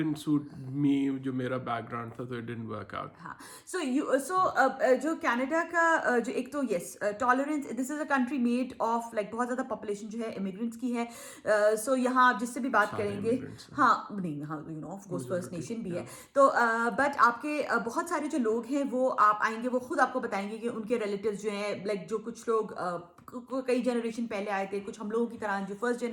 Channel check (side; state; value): both; identical; correlation 1.00